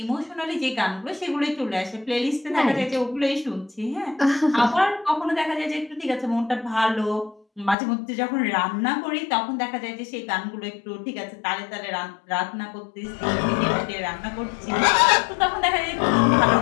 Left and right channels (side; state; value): right; drops out; at 7.8 s